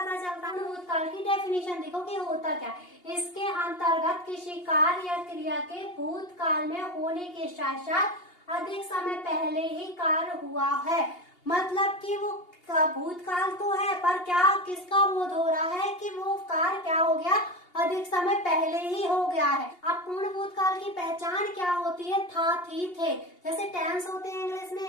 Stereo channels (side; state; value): right; late; 2.8 ms